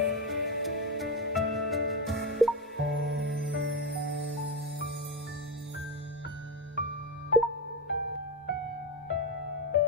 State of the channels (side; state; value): both; normal; correlation 0.13